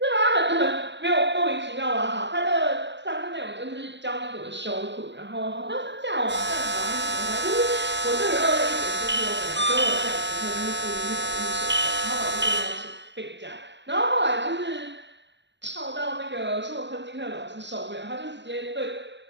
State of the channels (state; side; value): late; left; 0.52 ms